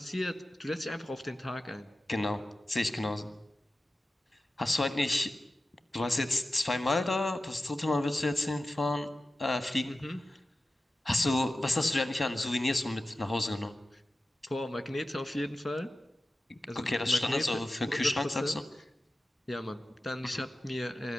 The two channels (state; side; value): normal; both; correlation 0.94